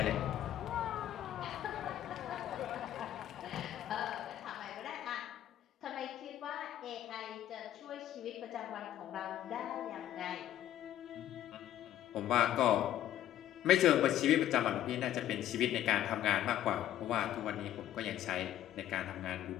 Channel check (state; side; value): quieter; right; 12.2 dB